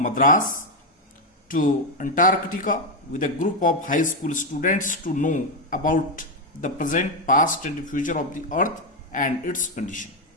Madras to Antarctica with a group of high school students to know about the present, past and future of the earth and its condition.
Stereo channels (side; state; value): both; normal; correlation 0.05